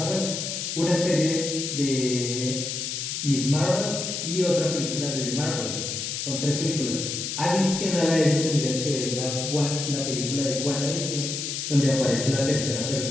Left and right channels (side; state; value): left; noise; hiss, 4 dB below the sound